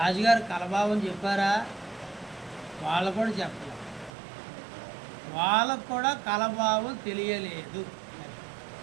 కలభావం చెప్పారా? వాళ్ళు కూడా చెప్పలేదు. వాళ్ళకు కూడా కలభావం తెలియలేదు.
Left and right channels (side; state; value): left; drops out; at 4.1 s